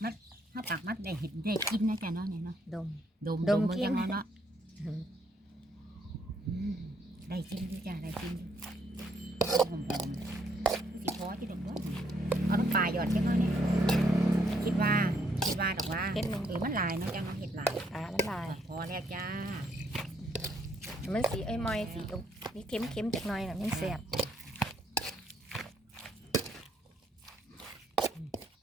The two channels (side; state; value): both; normal; correlation 0.71